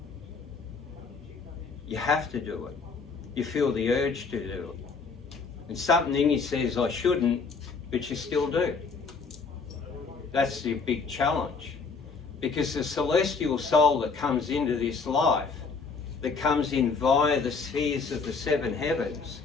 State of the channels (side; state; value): right; quieter; 4.8 dB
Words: You have to do it. You feel the urge to do it. And something in you says, I shouldn't, but you still do. That's the big challenge. Because the celestial soul that comes into this life, that comes in via the spheres of the seven heavens,